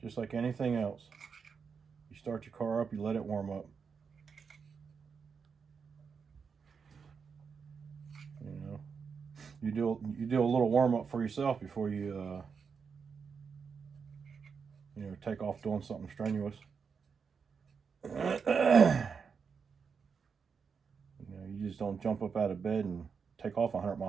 like anything else. You start your car up, you let it warm up. You know, you do a little warm up for yourself before you you know, take off doing something strenuous. You know, you just don't jump up out of bed and take off 100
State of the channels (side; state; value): left; quieter; 5.9 dB